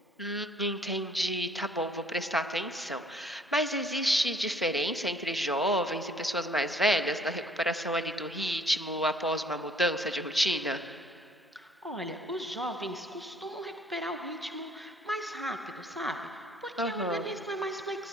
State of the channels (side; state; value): both; normal; correlation 0.59